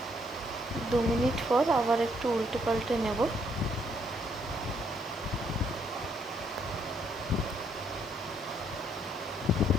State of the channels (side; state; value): both; normal; correlation 0.70